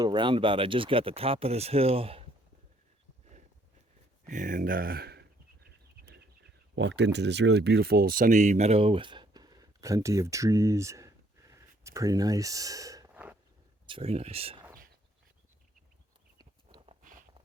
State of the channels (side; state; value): both; normal; correlation 0.66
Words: roundabout. I just got the top of this hill and walked into this really beautiful sunny meadow with plenty of trees. It's pretty nice. It's very nice.